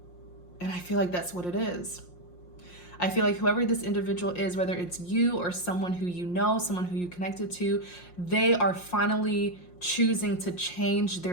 And I feel like that's what it is. I feel like whoever this individual is, whether it's you or someone who you know, someone who you connected to, they are finally choosing to change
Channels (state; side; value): late; right; 5.6 ms